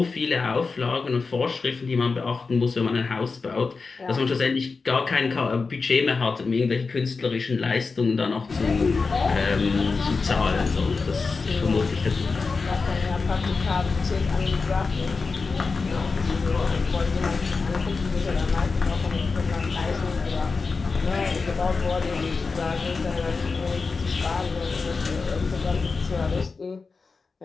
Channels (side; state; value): right; quieter; 4.4 dB